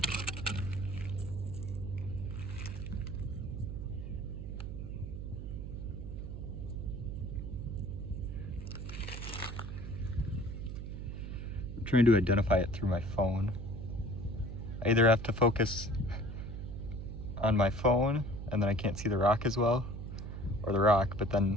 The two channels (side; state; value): right; noise; hum, 7 dB below the sound